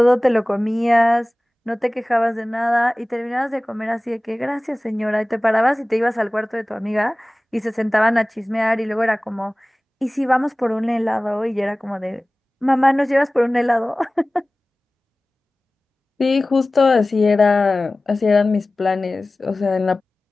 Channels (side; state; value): both; normal; correlation 0.98